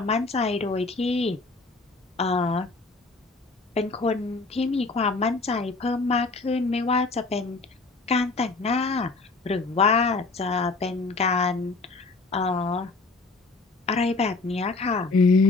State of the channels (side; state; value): right; quieter; 3.8 dB